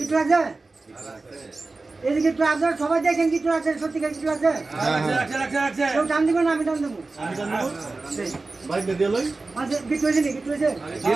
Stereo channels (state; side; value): quieter; left; 3.5 dB